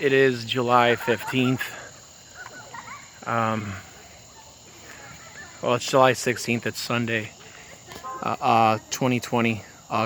is July 15th. Well, it's July 16th. It's Sunday. 2020,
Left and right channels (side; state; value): both; identical; correlation 1.00